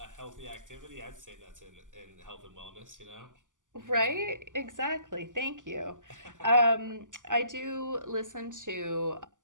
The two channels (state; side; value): late; left; 0.87 ms